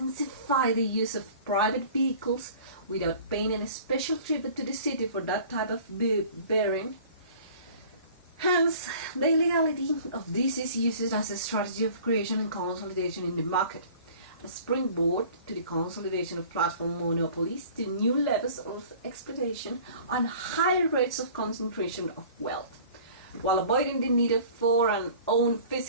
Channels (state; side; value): inverted; both; correlation -0.47